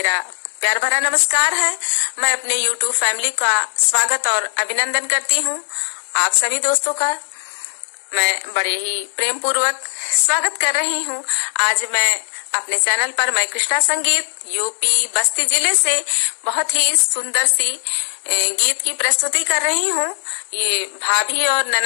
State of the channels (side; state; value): right; silent; digital silence